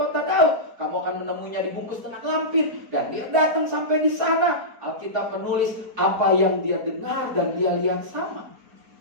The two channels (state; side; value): late; left; 4.2 ms